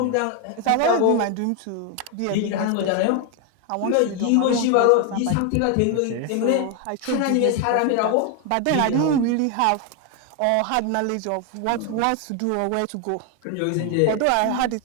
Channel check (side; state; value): both; different; correlation 0.01